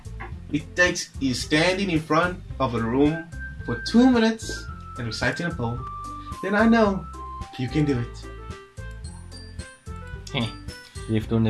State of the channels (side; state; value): both; identical; correlation 1.00